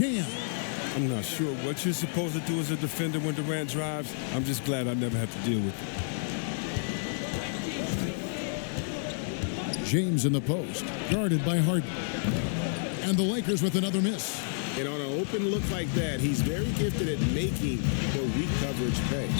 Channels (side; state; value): right; silent; digital silence